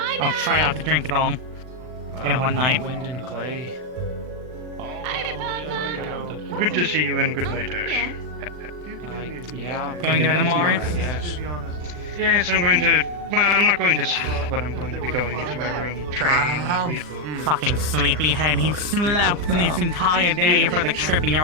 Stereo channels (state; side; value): late; left; 40 ms